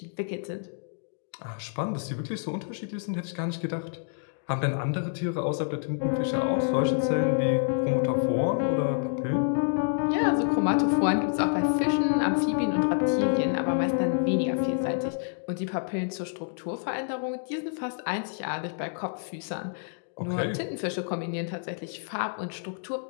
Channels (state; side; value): silent; right; digital silence